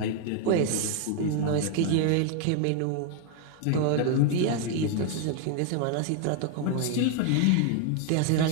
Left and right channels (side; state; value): both; different; correlation 0.00